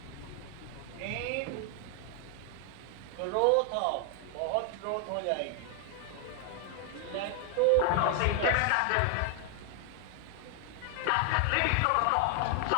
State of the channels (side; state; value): both; different; correlation 0.00